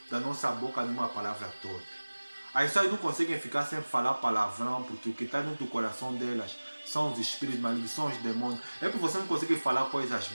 da nossa boca nenhuma palavra torpe. As pessoas não conseguem ficar sem falar palavrão, porque o que está dentro do coração delas são os espíritos malignos, são os demônios. É porque você não consegue falar coisas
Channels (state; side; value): inverted; both; correlation -1.00